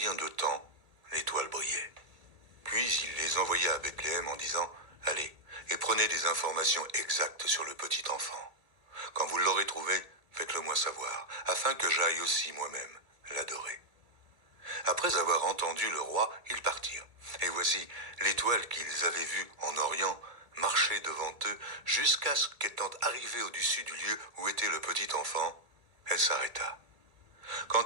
de temps l'étoile brillait. Puis il les envoya à Bethléem en disant : « Allez, et prenez des informations exactes sur le petit enfant. Quand vous l'aurez trouvé, faites-le moi savoir, afin que j'aille aussi moi-même l'adorer. » Après avoir entendu le roi, ils partirent. Et voici, l'étoile qu'ils avaient vue en Orient marchait devant eux jusqu'à ce qu'étant arrivée au-dessus du lieu où était le petit enfant, elle s'arrêta.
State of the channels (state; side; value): late; left; 1.8 ms